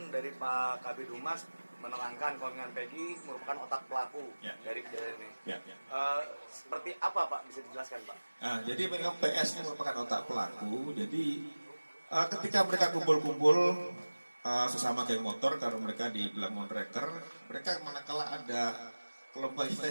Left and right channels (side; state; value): both; inverted; correlation -1.00